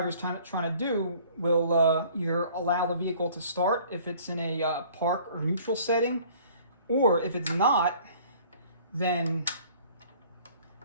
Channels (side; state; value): both; inverted; correlation -0.53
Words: is trying to do, will either allow the vehicle to start if it's in a park or neutral setting, or if it's not, then